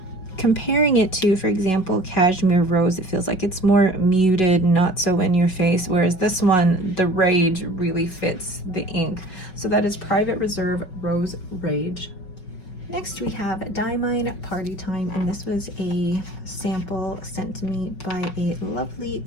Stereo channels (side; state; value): right; late; 5.4 ms